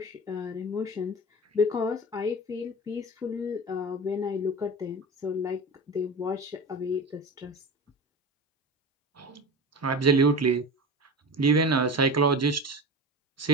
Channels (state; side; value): normal; both; correlation 0.30